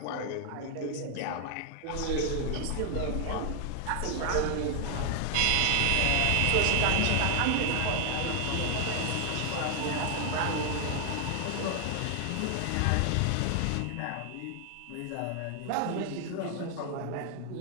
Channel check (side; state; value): both; different; correlation 0.00